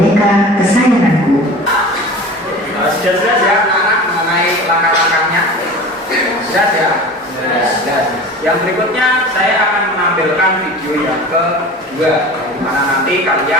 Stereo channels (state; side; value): normal; both; correlation 0.37